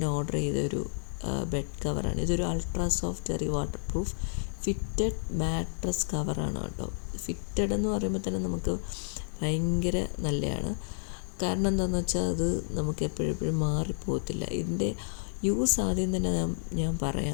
ഓർഡർ ചെയ്തൊരു ബെഡ് കവറാണ്. ഇതൊരു ultra soft cherry waterproof fitted mattress കവറാണ് കേട്ടോ. ഫിറ്റഡ് എന്ന് പറയുമ്പോൾ തന്നെ നമുക്ക് ഭയങ്കര നല്ലതാണ്. കാരണം എന്താണെന്ന് വെച്ചാൽ അത് നമുക്ക് എപ്പോഴും മാറിപ്പോകത്തില്ല. ഇതിൻ്റെ യൂസ് ആദ്യം തന്നെ ഞാൻ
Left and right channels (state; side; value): silent; right; digital silence